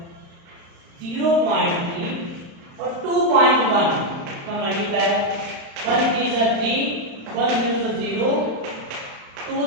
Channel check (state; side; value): late; left; 35 ms